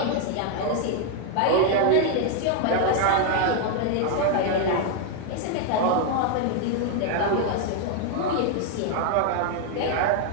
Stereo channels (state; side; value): different; both; correlation 0.00